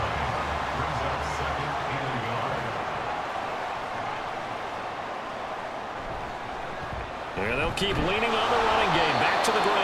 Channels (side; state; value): both; identical; correlation 1.00